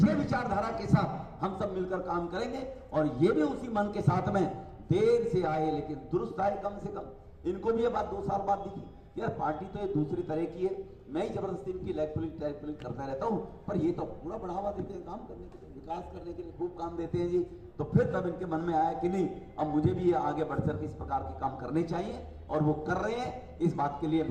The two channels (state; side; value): identical; both; correlation 1.00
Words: विचारधारा के साथ हम सब मिलकर काम करेंगे और ये भी उसी मन के साथ में देर से आए लेकिन दुरुस्त आए कम से कम। इनको भी ये बात 2 साल बाद दिखी यार पार्टी तो ये दूसरी तरह की है, मैं ही जबरदस्ती इनकी लेग पुलिंग करता रहता हूं, पर ये तो पूरा बढ़ावा देते हैं काम करने के लिए, विकास करने के लिए खूब काम देते हैं जी। तो फिर तब इनके मन में आया कि नहीं अब मुझे भी ये आगे बढ़कर इस प्रकार के काम करने चाहिए और वो कर रहे हैं। इस बात के लिए